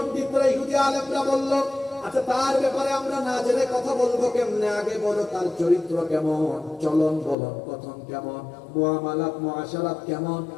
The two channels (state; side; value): drops out; right; at 7.4 s